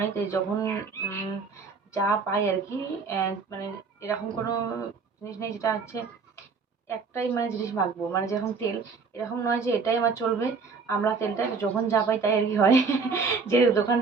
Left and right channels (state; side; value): quieter; left; 4.9 dB